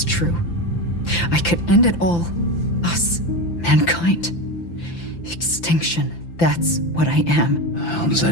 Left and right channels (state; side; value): late; right; 5.9 ms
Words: true. I could end it all. Us. Mankind. Extinction. That's what I am. How does